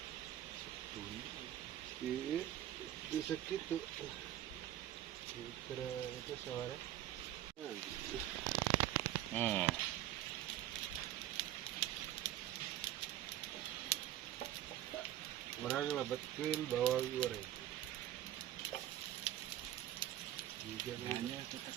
Iya, itu segitu. Kira itu suara. Orang lebetkeun bawang goreng. Hanya kita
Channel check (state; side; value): quieter; left; 13.0 dB